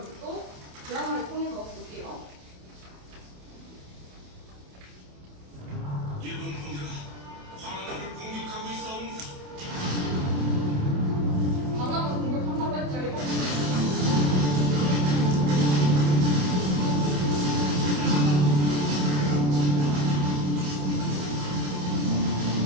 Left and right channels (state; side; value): late; left; 28 ms